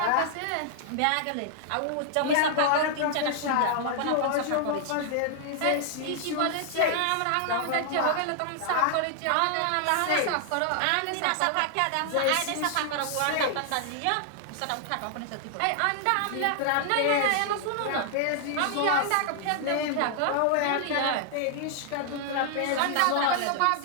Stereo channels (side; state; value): both; different; correlation -0.01